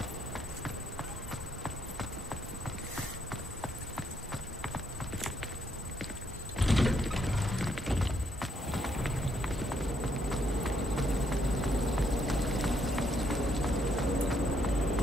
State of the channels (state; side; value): normal; both; correlation 0.74